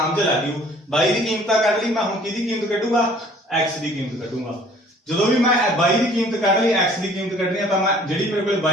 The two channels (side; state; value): both; normal; correlation 0.54